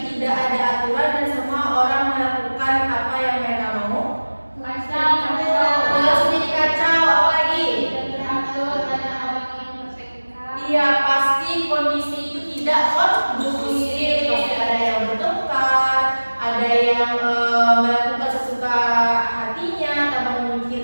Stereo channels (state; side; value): inverted; both; correlation -1.00